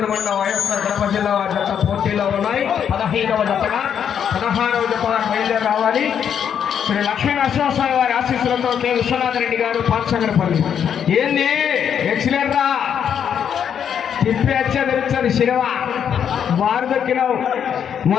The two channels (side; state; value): right; quieter; 8.3 dB